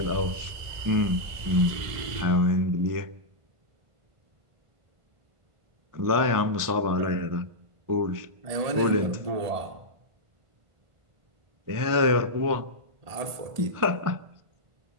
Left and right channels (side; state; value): left; late; 1.5 ms